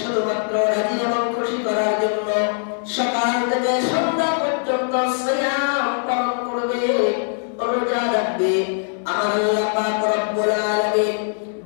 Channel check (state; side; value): silent; right; 65 dB below the other